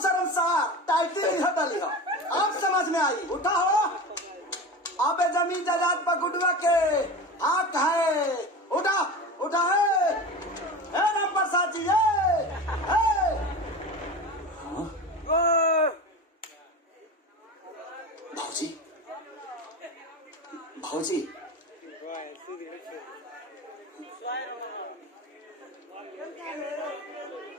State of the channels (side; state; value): both; normal; correlation 0.29